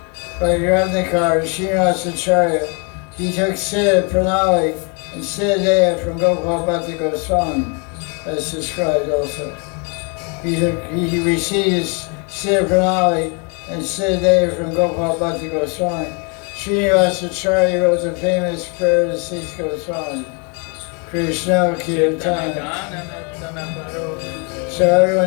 Bhakti Ratnakar, Srinivasacharya, he took Siddha Pranali and Siddha Deya from Gopal Bhakti Goswami, as described also. He received Siddha Pranali and Siddha Deya from Gopal Bhakti Goswami. Srinivasacharya wrote the famous prayer to Six Goswami, Krishna Kirtana. So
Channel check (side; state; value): right; quieter; 34.5 dB